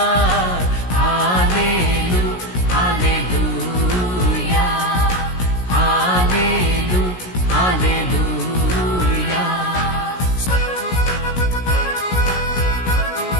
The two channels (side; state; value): right; late; 17 ms